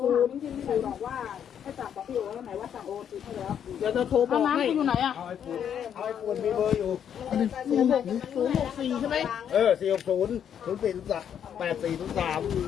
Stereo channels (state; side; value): quieter; right; 8.8 dB